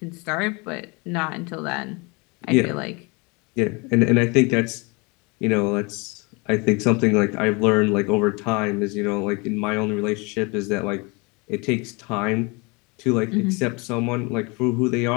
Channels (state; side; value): quieter; right; 28.6 dB